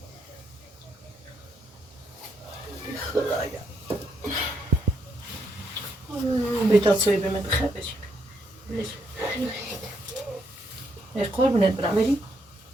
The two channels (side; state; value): both; normal; correlation 0.76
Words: خدایا بیتا توی به من بخیر بشی قربونت برم بری